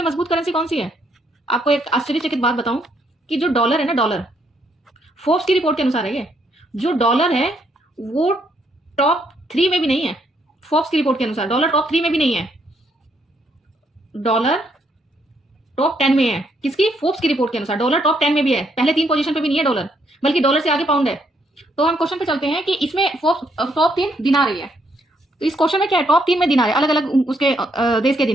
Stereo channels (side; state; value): both; normal; correlation 0.73